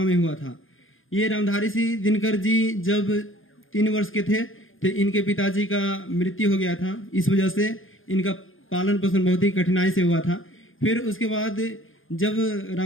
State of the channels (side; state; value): right; late; 0.59 ms